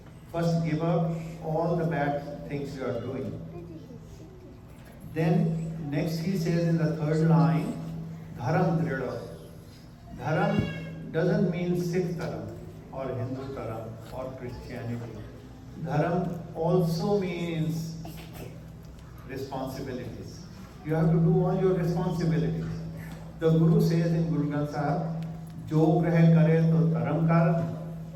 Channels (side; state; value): both; identical; correlation 1.00